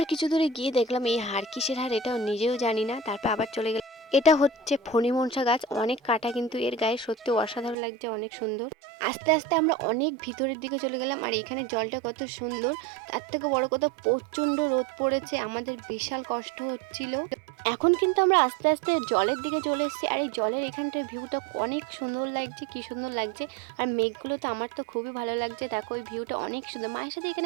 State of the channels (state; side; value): drops out; left; at 7.8 s